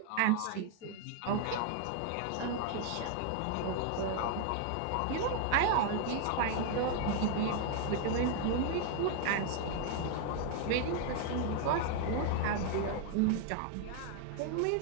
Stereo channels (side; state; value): both; different; correlation 0.00